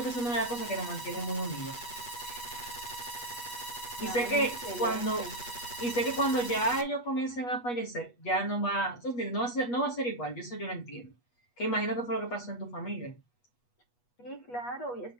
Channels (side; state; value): right; late; 8.3 ms